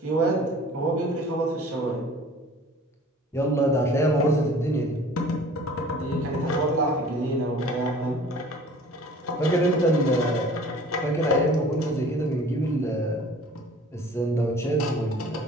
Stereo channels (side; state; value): both; normal; correlation 0.47